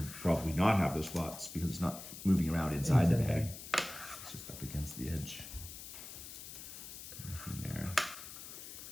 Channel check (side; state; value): left; noise; hiss, 12 dB below the sound